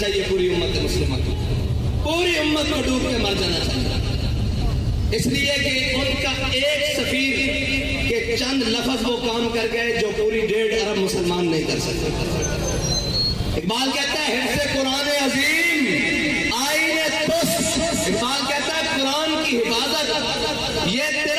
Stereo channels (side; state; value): both; identical; correlation 1.00